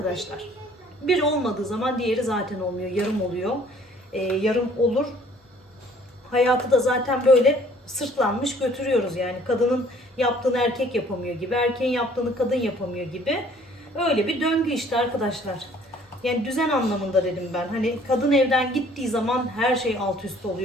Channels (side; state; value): both; normal; correlation 0.56